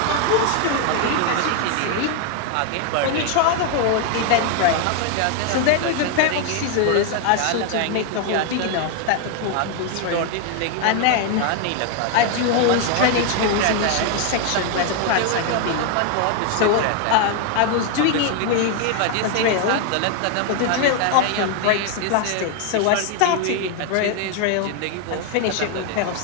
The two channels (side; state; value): both; different; correlation 0.01